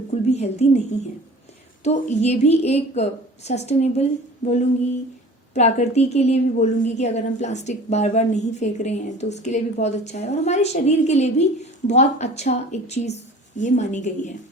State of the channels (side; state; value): both; normal; correlation 0.43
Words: भी हेल्दी नहीं है। तो ये भी एक सस्टेनेबल बोलूँगी, प्रकृति के लिए भी बोलूँगी कि अगर हम प्लास्टिक बार बार नहीं फेंक रहे हैं तो उसके लिए भी बहुत अच्छा है और हमारे शरीर के लिए भी बहुत अच्छा एक चीज़ ये मानी गई है।